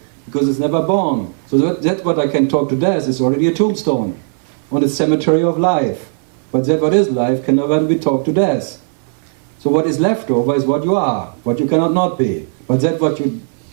because it's never born. So that what I can talk to death is already a tombstone on the cemetery of life. But that what is life can never be talked to death. So what is left over is what you are, what you cannot not be. But that what you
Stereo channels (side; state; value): left; silent; 58 dB below the other